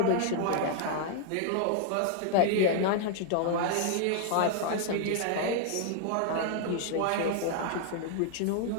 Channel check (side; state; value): both; different; correlation 0.00